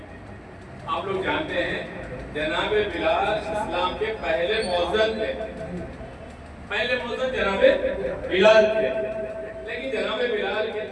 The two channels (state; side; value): identical; both; correlation 1.00